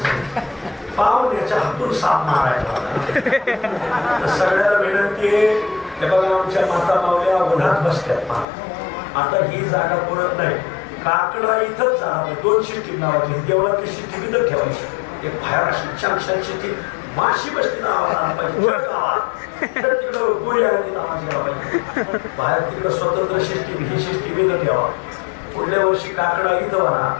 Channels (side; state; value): right; drops out; at 8.5 s